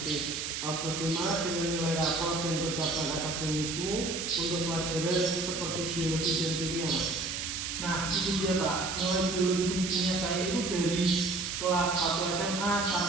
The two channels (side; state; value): right; noise; hiss, 4 dB below the sound